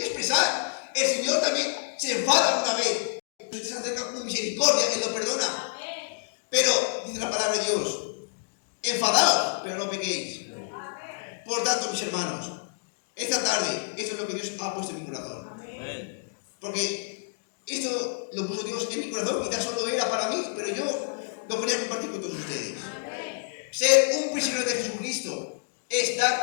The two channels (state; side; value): silent; right; digital silence